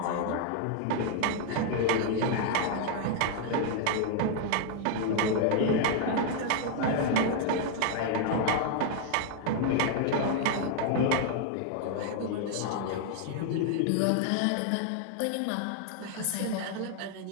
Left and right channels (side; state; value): both; different; correlation 0.00